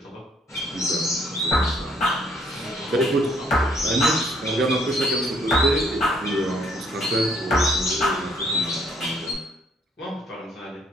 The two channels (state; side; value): normal; both; correlation 0.66